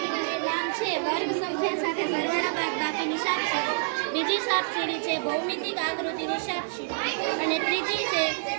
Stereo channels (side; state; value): left; silent; digital silence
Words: જે વર્ગ સંખ્યા સાથે સરવાળા બાદબાકીની સાપસીડી. બીજી સાપસીડી છે ભૌમિતિક આકૃતિની સાપસીડી અને ત્રીજી